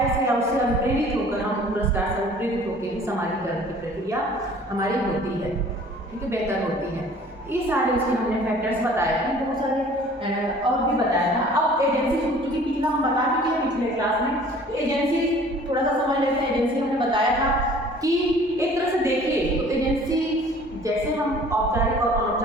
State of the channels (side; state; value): both; normal; correlation 0.50